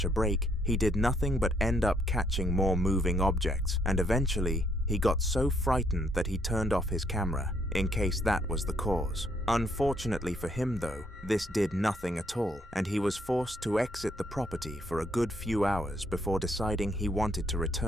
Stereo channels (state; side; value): normal; both; correlation 0.71